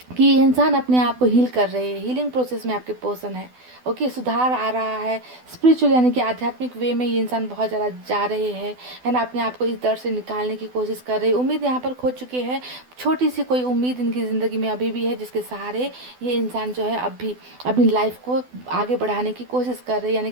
कि ये इंसान अपने आप को हील कर रहे हैं, हीलिंग प्रोसेस में आपके पर्सन है। ओके, सुधार आ रहा है, स्पिरिचुअल यानी कि आध्यात्मिक वे में ये इंसान बहुत ज़्यादा जा रहे हैं, है ना, अपने आप को इस दर्द से निकालने की कोशिश कर रहे हैं। उम्मीद यहाँ पर खो चुके हैं, छोटी सी कोई उम्मीद इनकी ज़िंदगी में अभी भी है, जिसके सहारे ये इंसान जो है अब भी अपनी लाइफ को आगे बढ़ाने की कोशिश कर रहे हैं, यानी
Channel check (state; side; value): late; left; 12 ms